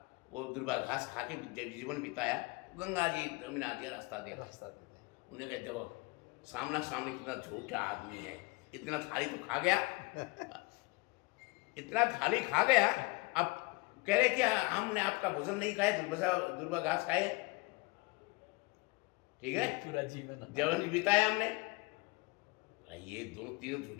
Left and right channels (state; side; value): quieter; right; 25.8 dB